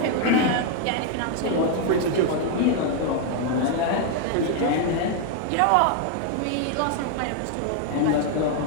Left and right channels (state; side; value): different; both; correlation 0.00